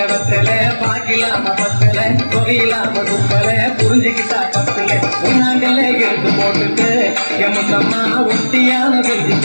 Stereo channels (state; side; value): inverted; both; correlation -1.00